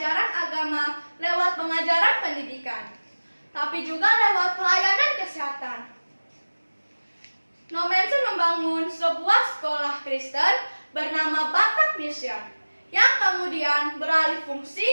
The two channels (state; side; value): inverted; both; correlation -1.00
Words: agama lewat pengajaran pendidikan, tapi juga lewat pelayanan kesehatan. Nommensen membangun sebuah sekolah Kristen bernama Batak Mission, yang kemudian beralih fungsi